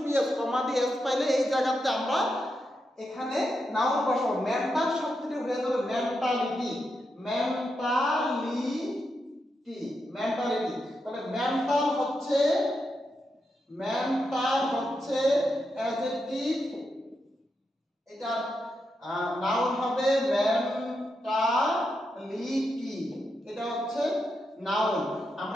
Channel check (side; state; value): both; normal; correlation 0.85